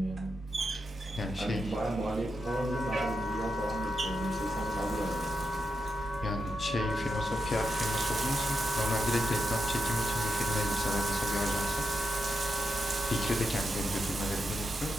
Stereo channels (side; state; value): both; normal; correlation 0.85